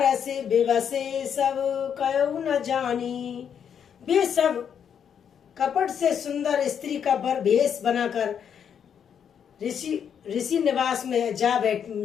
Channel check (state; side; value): quieter; right; 8.0 dB